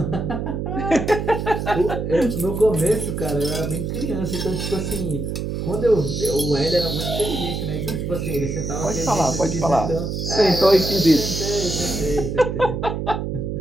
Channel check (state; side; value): noise; right; hum, 3 dB below the sound